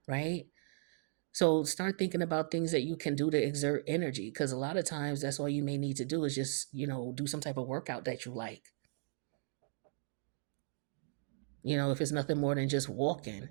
right? So start thinking about things that you can do to exert energy, because a lot of times that's all you may need to do is just, do some type of workout that you like. If it's nothing more than just walking,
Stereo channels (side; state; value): left; silent; digital silence